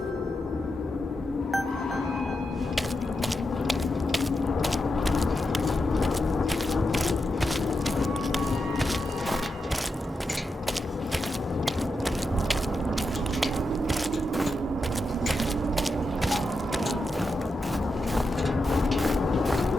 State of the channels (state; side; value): normal; both; correlation 0.87